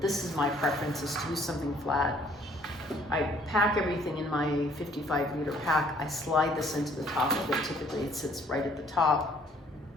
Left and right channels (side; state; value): both; normal; correlation 0.60